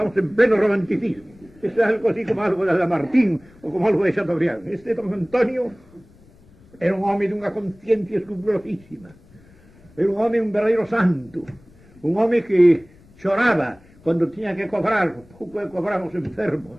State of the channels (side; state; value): left; noise; rumble, 27 dB below the sound